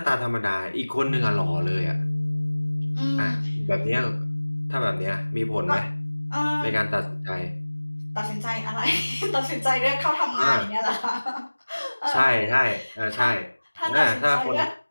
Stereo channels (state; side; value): inverted; both; correlation -1.00